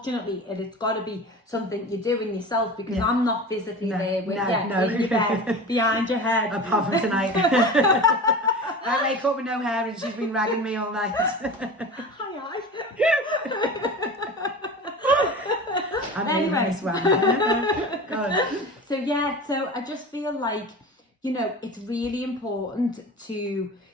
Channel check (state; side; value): normal; both; correlation 0.33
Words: it's got to be something you're doing yourself, because I'm not physically there with you in your bed, behind your head. Apart from tonight. I wake up with no hair and she's been ragging me all night. Hi. Anyway. This one. God. So I just feel like, you know, it's really important to